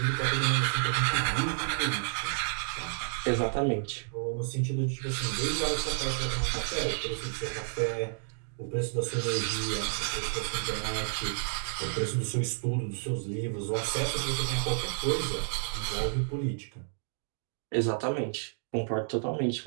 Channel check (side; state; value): left; silent; digital silence